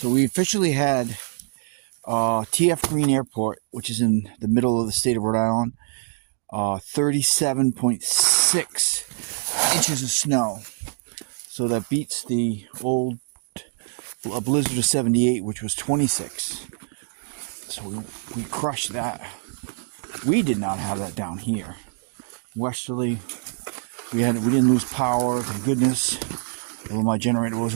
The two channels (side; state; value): left; silent; 61 dB below the other